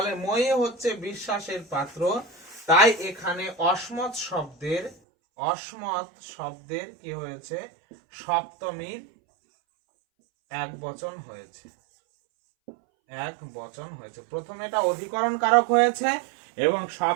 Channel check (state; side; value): drops out; left; at 5.0 s